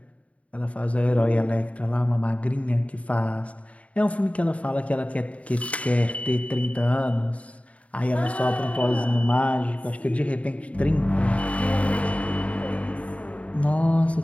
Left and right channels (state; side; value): late; right; 0.066 ms